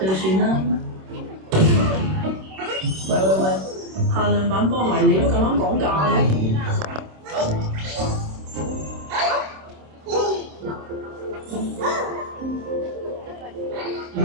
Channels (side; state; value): left; late; 26 ms